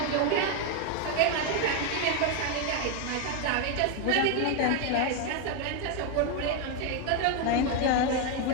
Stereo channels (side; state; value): both; different; correlation 0.01